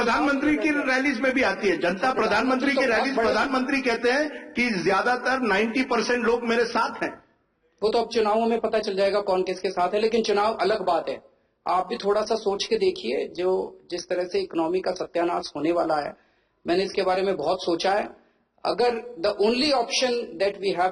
की रैलीज में भी आती है जनता. प्रधानमंत्री की रैलीज, प्रधानमंत्री कहते हैं कि ज्यादातर 90% लोग मेरे साथ हैं. वो तो अब चुनावों में पता चल जाएगा कौन किसके साथ है. लेकिन चुनाव अलग बात है. आप भी थोड़ा सा सोच के देखिए, जो जिस तरह से इकोनॉमी का सत्यानाश होने वाला है. मैंने इसके बारे में बहुत सोचा है. अगर the only option that we have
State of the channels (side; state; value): both; identical; correlation 1.00